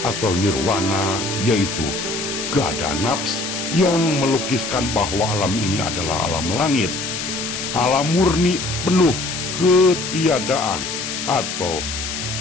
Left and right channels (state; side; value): noise; left; hiss, 5 dB below the sound